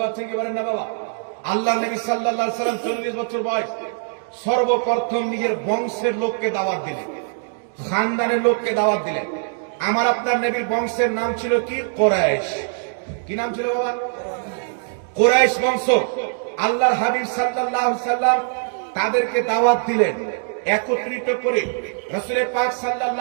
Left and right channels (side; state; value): left; silent; digital silence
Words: পারছেন কি বলেন না বাবা? আল্লাহ নবী সাল্লাল্লাহু আলাইহি সাল্লাম 40 বছর বয়স, সর্বপ্রথম নিজের বংশের লোককে দাওয়াত দিলেন, খানদানের লোককে দাওয়াত দিলেন। আমার আপনার নবীর বংশের নাম ছিল কি? কুরাইশ। কি নাম ছিল বাবা? কুরাইশ বংশ। আল্লাহর হাবিব সাল্লাল্লাহু আলাইহি সাল্লাম তাদেরকে দাওয়াত দিলেন একত্রিত করে। রাসূল পাক